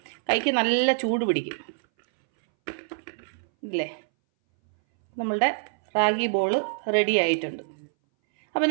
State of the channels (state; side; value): silent; left; 60 dB below the other